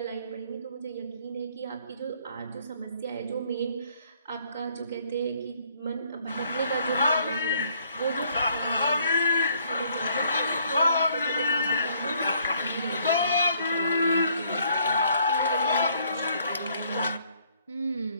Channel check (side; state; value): both; inverted; correlation -0.65